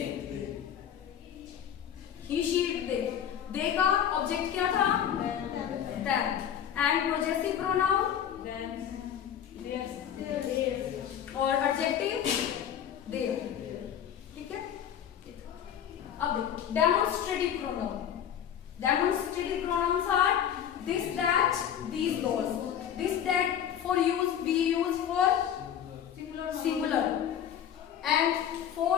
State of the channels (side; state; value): right; quieter; 9.5 dB